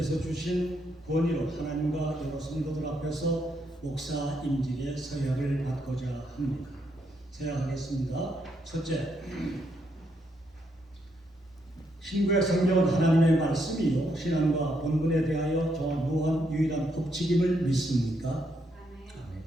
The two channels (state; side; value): normal; both; correlation 0.77